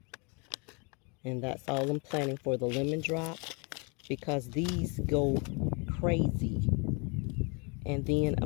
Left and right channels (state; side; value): quieter; right; 32.2 dB